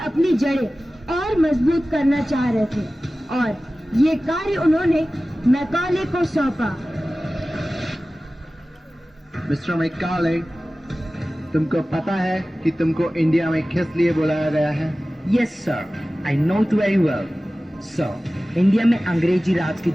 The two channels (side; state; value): both; normal; correlation 0.96